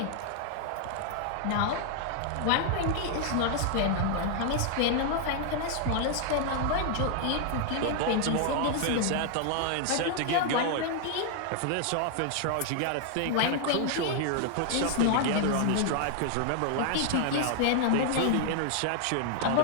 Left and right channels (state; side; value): different; both; correlation 0.00